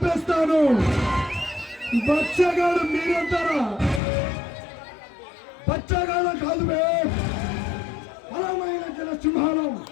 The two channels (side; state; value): right; drops out; at 4.0 s